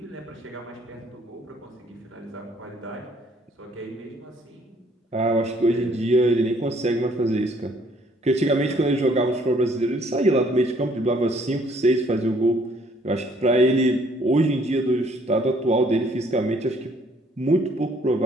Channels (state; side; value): normal; both; correlation 0.63